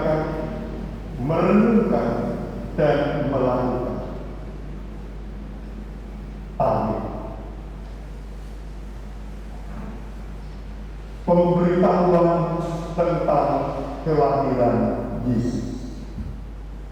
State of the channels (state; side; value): identical; both; correlation 1.00